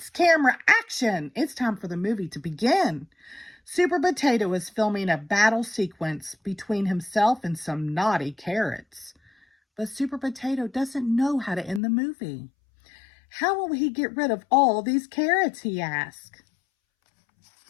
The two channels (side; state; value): right; drops out; at 11.8 s